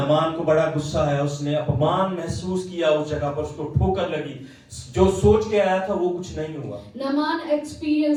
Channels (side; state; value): both; identical; correlation 1.00